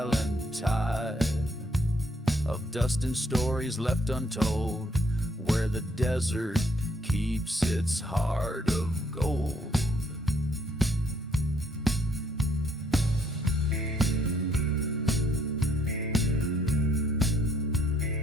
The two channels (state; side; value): normal; both; correlation 0.69